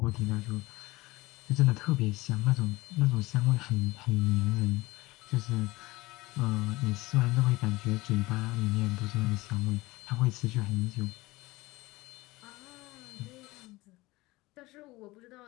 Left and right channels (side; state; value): right; quieter; 20.5 dB